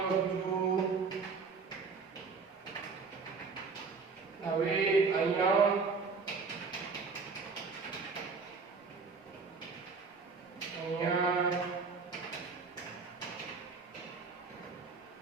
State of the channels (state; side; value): quieter; left; 4.8 dB